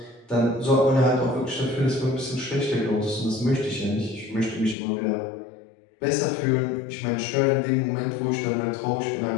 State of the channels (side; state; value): right; drops out; at 4.8 s